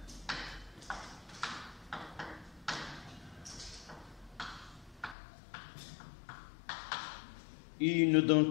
Et il nous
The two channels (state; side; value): drops out; right; at 5.2 s